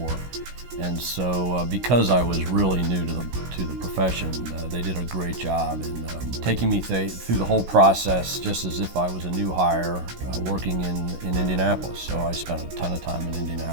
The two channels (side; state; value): left; late; 16 ms